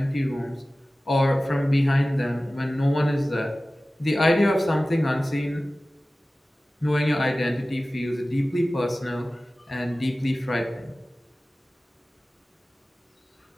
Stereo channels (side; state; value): both; normal; correlation 0.97